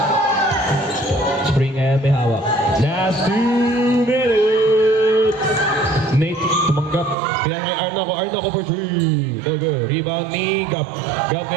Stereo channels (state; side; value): drops out; left; at 7.2 s